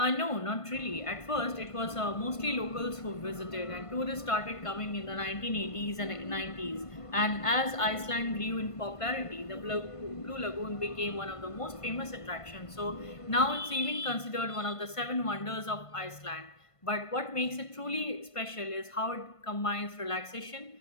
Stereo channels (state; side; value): late; right; 1.5 ms